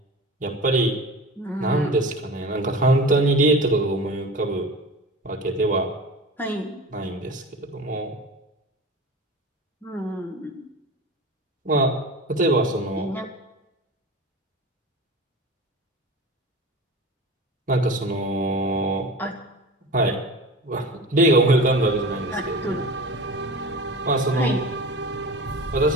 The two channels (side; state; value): both; normal; correlation 0.33